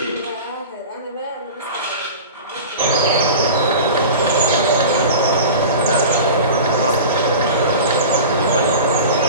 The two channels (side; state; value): both; inverted; correlation -0.34